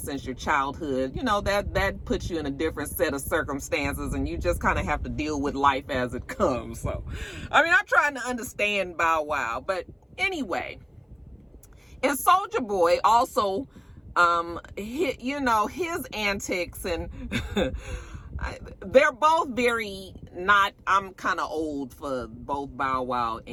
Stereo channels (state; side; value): identical; both; correlation 1.00